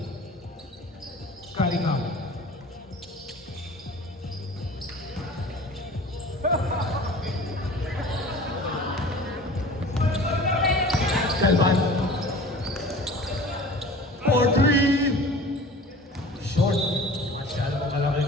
Cunningham. Galvan. For three. Short. Masyadong malaki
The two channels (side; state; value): both; normal; correlation 0.42